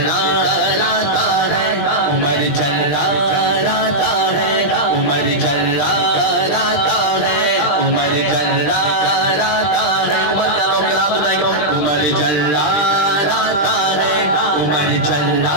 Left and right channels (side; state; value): right; late; 20 ms